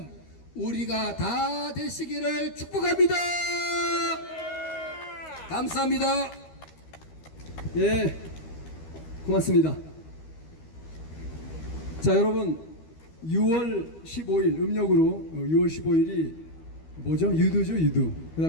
우리가 다 되시기를 축복합니다. 감사합니다. 예, 고맙습니다. 자, 여러분 6월 15일 음력으로 6월 15일이 뭐죠? 유두죠, 유두. 그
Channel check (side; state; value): right; late; 13 ms